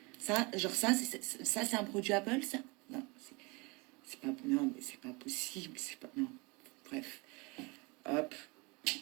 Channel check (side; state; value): left; quieter; 27.4 dB